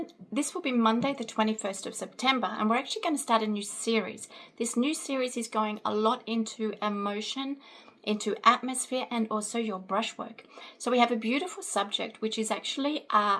This will be Monday the 21st of September, and we're actually going to start a new series. This new series is going a lot into emotion, into atmosphere, and also your brushwork. So we have a beautiful subject, which is actually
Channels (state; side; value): identical; both; correlation 1.00